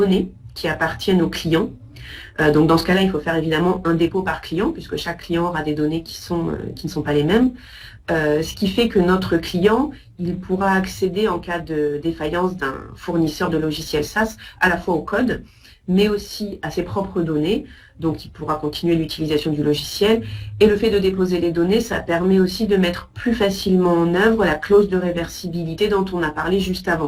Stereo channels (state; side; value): identical; both; correlation 1.00